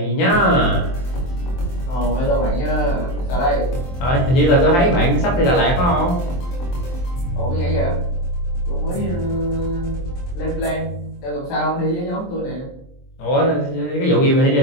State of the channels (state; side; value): late; right; 23 ms